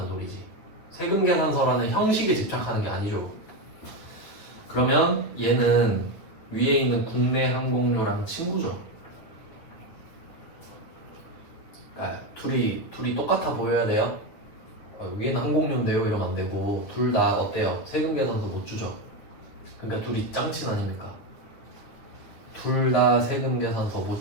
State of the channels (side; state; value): right; late; 9.7 ms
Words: 소리지. 세금계산서라는 형식에 집착하는 게 아니죠. 그러면 얘는 위에 있는 국내 항공료랑 친구죠. 둘이 똑같아 보여야 돼요. 위에는 항공료인데요 이러면 안 되고 둘 다 어때요? 세금계산서 못 주죠. 그러니까 둘이 짱친 아닙니까? 둘 다 세금계산서